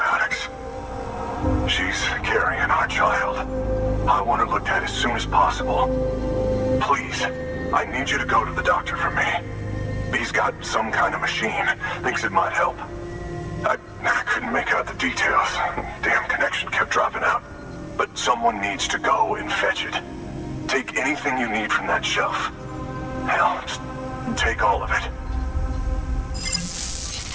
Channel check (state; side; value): identical; both; correlation 1.00